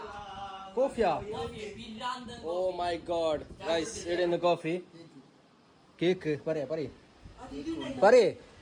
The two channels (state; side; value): identical; both; correlation 1.00